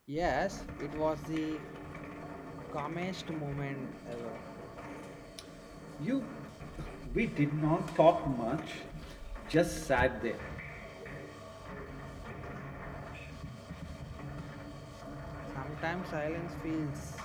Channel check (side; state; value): both; identical; correlation 1.00